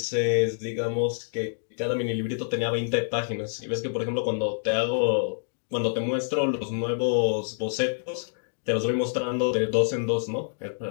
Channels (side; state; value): right; silent; digital silence